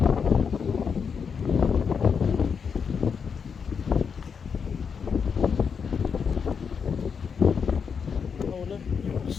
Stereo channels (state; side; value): quieter; right; 6.3 dB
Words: Oh look, little